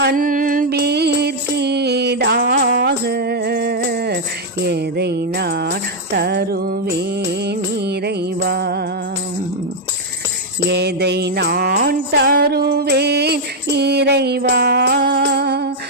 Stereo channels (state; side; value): normal; both; correlation -0.01